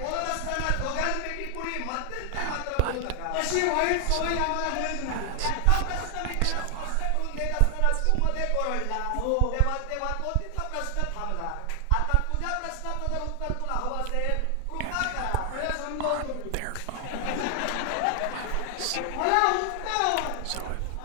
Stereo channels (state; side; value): different; both; correlation 0.00